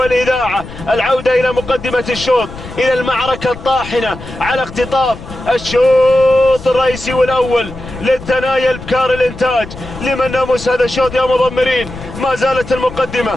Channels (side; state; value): left; noise; rumble, 14 dB below the sound